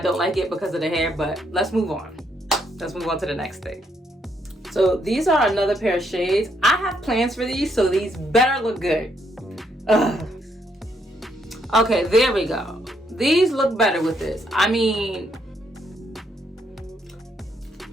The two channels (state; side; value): normal; both; correlation 0.74